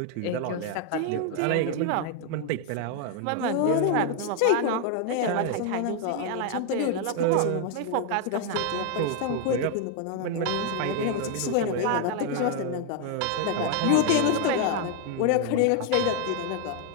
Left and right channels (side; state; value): both; different; correlation 0.01